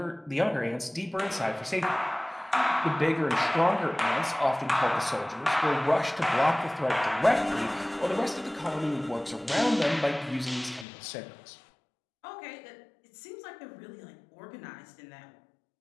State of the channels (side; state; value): right; drops out; at 10.9 s